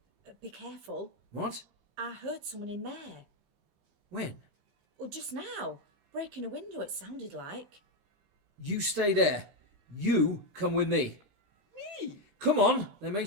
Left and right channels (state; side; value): late; left; 15 ms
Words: Be careful. What? I heard someone in there. When? Well, just now. Breaking a window, it sounded like. You stay there. You come with me. Me? Come on, they may